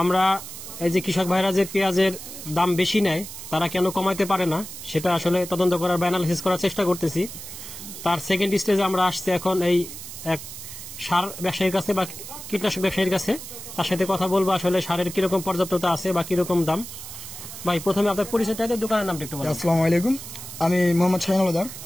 আমরা এই যে কৃষক ভাইরা যে পেঁয়াজের দাম বেশি নেয়, তারা কেন কমাইতে পারে না, সেটা আসলে তদন্ত করার বা অ্যানালিসিস করার চেষ্টা করতেছি। তার সেকেন্ড স্টেজে আমরা আসছি এখন এই এক সার ব্যবসায়ীর কাছে বা কীটনাশক ব্যবসায়ীর কাছে, তার সাথে কথা বলবো আসলে সারের কিরকম পর্যাপ্ততা আছে বা কিরকম দাম। ভাই, প্রথমে আপনার পরিচয়টা, দোকানের নামটা একটু বলুন। আসসালামু আলাইকুম, আমি মোহাম্মদ শাহিন আলাদার,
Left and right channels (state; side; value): noise; right; hiss, 11 dB below the sound